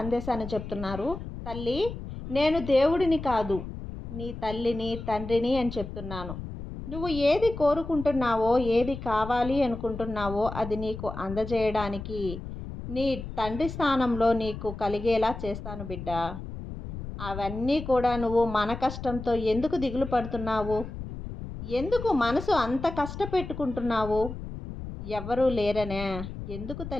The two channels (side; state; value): left; noise; rumble, 9 dB below the sound